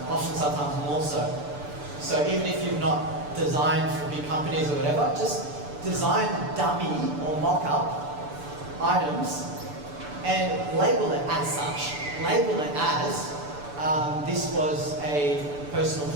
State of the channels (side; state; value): left; late; 6.9 ms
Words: Often, sometimes more so. So even if you've not designed for big companies or whatever, just design dummy or mock-up items and label it as such. Label it as this was a personal